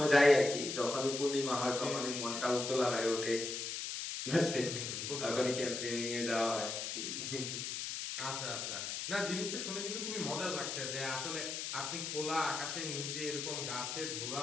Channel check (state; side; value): noise; left; hiss, 4 dB below the sound